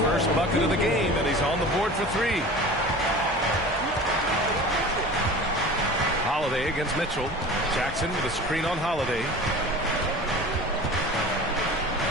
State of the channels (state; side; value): normal; both; correlation 0.38